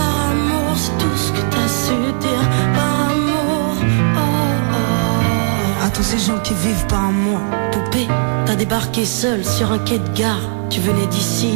amour, c'est tout ce que t'as su dire. Par amour, oh oh. À tous ces gens qui vivent par amour. Poupée, t'as débarqué seule sur un quai de gare. Tu venais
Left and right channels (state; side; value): silent; left; digital silence